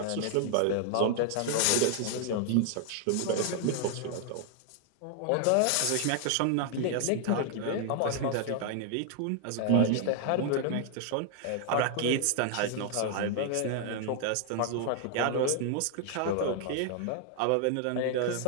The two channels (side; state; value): both; different; correlation 0.00